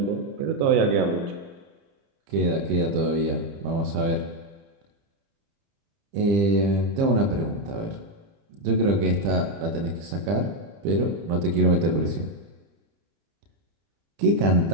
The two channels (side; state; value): left; late; 30 ms